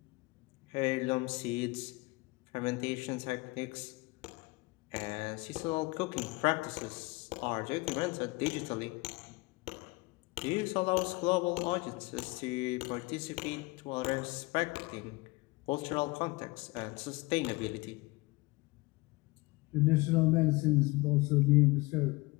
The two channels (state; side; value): quieter; right; 23.7 dB